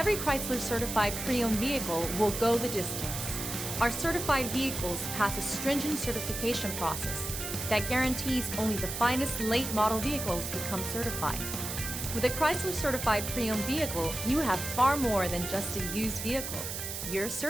Chrysler certified pre-owned vehicle will go the distance. Our certified vehicles pass a stringent certification process that guarantees only the finest late model vehicles become certified. With a Chrysler certified pre-owned vehicle, you have far more than just a used vehicle. You're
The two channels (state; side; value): noise; right; hiss, 5 dB below the sound